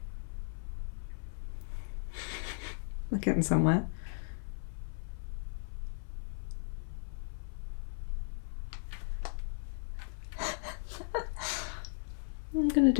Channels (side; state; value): right; silent; 53 dB below the other